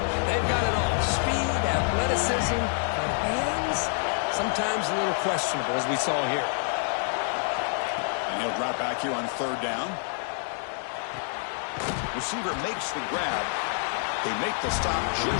they've got it all. Speed, athleticism, but hands, sometimes a little questionable, as we saw here. And he'll drop back here on 3rd down. Receiver makes the grab. They make the stop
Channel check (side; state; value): right; silent; 60 dB below the other